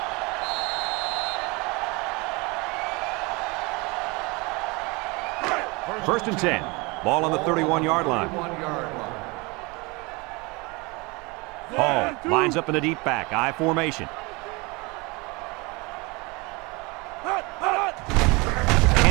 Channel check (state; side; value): quieter; left; 26.4 dB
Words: First and 10. Ball on the 31-yard line. 31-yard line. Hall lines up in the deep back. I formation.